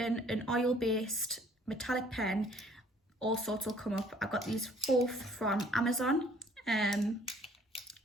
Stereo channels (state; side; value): normal; both; correlation 0.58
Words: an oil-based metallic pen, all sorts will come up. I got these both from Amazon.